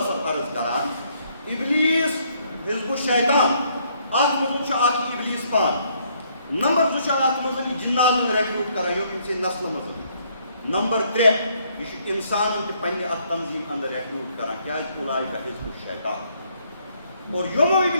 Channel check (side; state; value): both; inverted; correlation -0.68